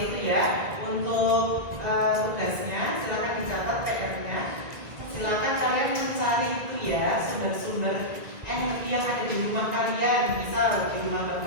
itu ya. Untuk tugasnya silakan dicatat PR-nya. Silakan kalian mencari itu ya sumber-sumber energi yang ada di rumah kalian. Misal di rumah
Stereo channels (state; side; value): late; left; 1.9 ms